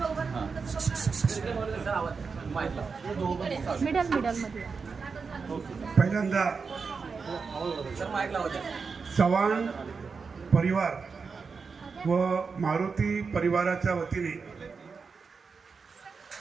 middle मध्ये पहिल्यांदा सर माईक लावा. चव्हाण परिवार व मारुती परिवाराच्या वतीने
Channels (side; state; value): left; quieter; 5.1 dB